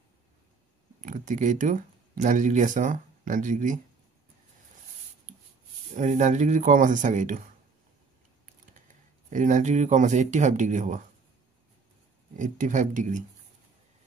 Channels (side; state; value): left; quieter; 4.7 dB